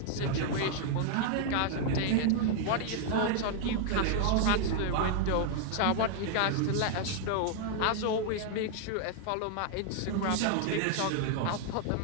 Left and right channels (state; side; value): different; both; correlation 0.00